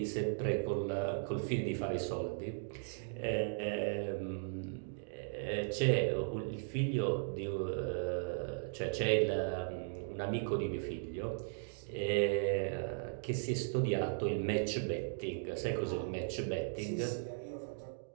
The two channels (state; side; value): silent; left; digital silence